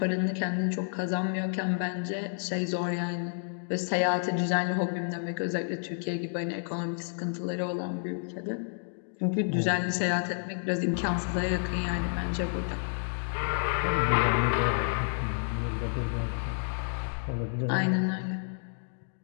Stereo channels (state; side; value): silent; right; digital silence